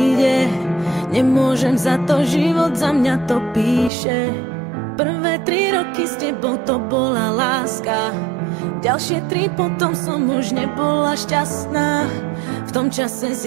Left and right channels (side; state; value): left; drops out; at 3.9 s